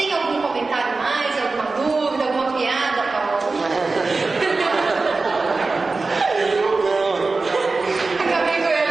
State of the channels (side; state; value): left; quieter; 3.8 dB